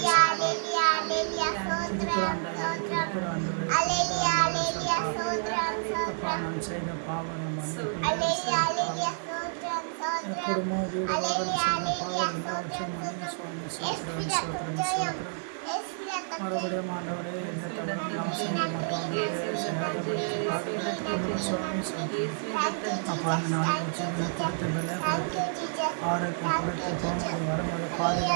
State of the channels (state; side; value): silent; left; 58 dB below the other